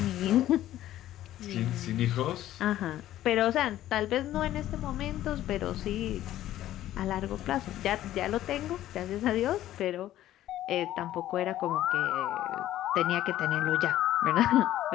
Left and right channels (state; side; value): quieter; right; 13.4 dB